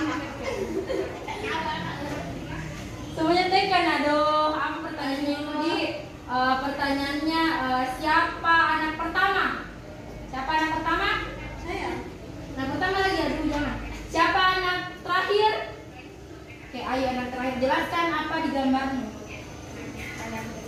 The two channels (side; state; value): both; identical; correlation 1.00